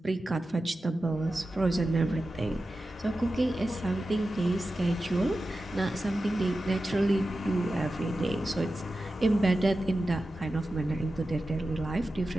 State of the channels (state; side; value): normal; both; correlation 0.93